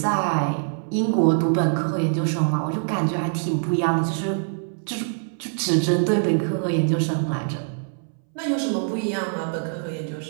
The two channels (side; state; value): left; silent; 63 dB below the other